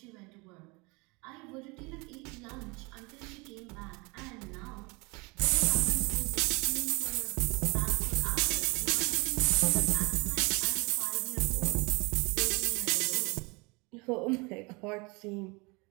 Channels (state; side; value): quieter; left; 27.5 dB